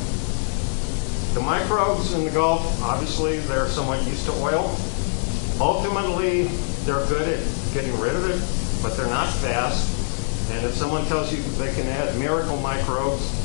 the microbes in the Gulf, obviously, they're somewhat used to oil. Ultimately, they're good at getting rid of it, but they're not fast. And if someone tells you they can add miracle microbes,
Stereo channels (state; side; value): silent; right; digital silence